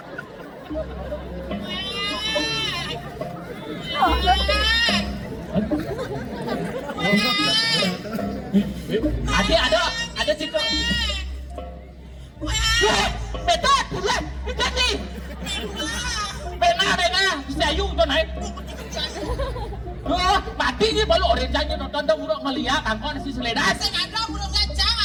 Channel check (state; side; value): identical; both; correlation 1.00